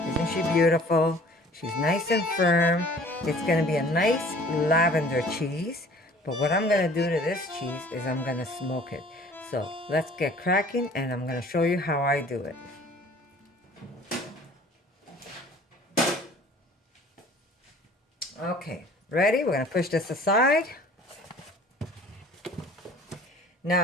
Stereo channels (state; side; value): normal; both; correlation 0.50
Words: Isn't she beautiful? She's nice and firm. It's going to be a nice lavender cheese. But what I'm going to do to this cheese is I'm going to smoke it. So let's get cracking and I'm going to show you how I do it. Okay, ready? We're going to push this aside.